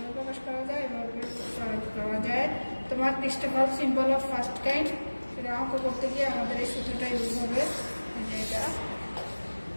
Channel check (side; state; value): both; inverted; correlation -1.00